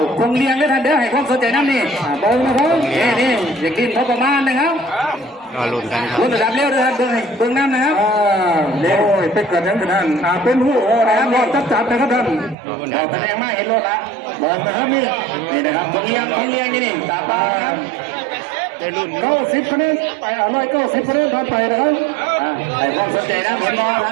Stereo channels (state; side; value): drops out; left; at 12.6 s